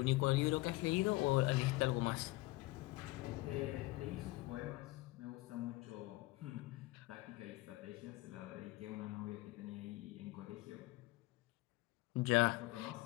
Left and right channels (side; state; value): right; quieter; 20.8 dB